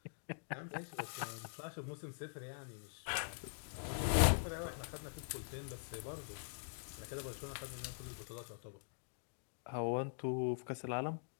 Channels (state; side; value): silent; right; digital silence